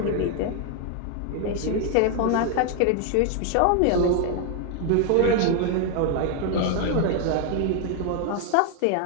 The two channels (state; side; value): different; both; correlation 0.00